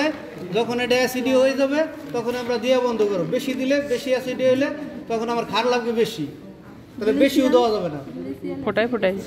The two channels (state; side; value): identical; both; correlation 1.00